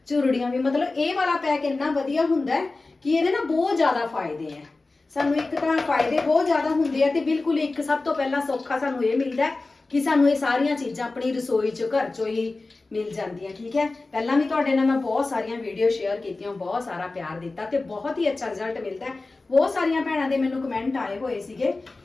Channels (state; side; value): quieter; right; 3.4 dB